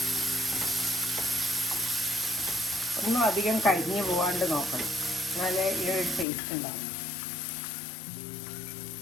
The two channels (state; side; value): drops out; right; at 6.2 s